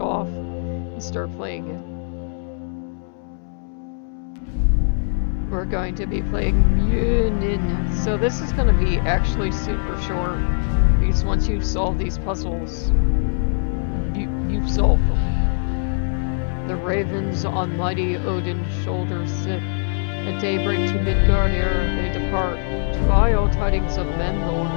and started playing it. We're going to be playing Munin. So this is going to be actually super short, because once you solve these puzzles, you've solved them. The ravens on mighty Odin's shoulders sit. At daybreak to Midgard ere they depart. To all tidings of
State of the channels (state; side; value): silent; right; 64 dB below the other